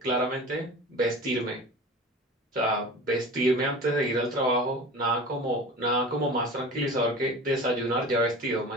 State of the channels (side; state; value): both; normal; correlation 0.36